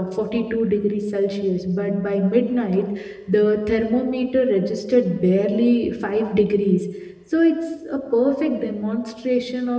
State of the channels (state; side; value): identical; both; correlation 1.00